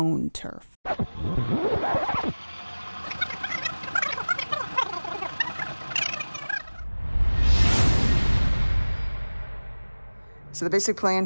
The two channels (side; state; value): both; inverted; correlation -1.00